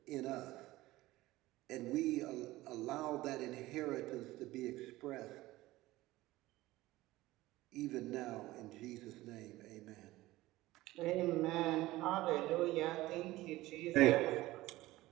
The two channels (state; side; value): quieter; left; 17.8 dB